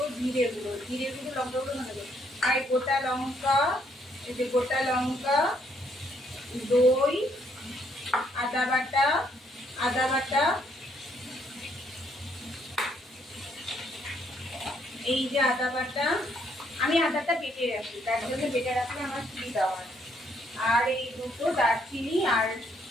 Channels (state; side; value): normal; both; correlation 0.70